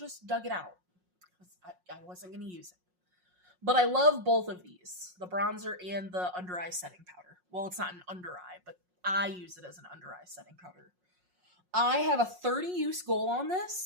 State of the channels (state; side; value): late; left; 5.5 ms